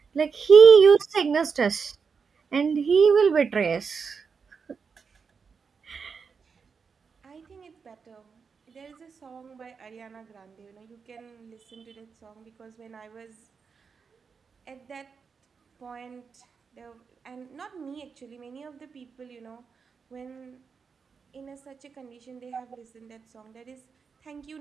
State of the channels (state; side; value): quieter; left; 5.6 dB